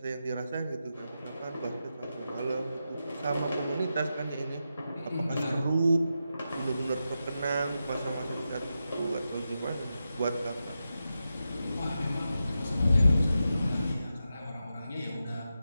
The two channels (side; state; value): both; inverted; correlation -0.89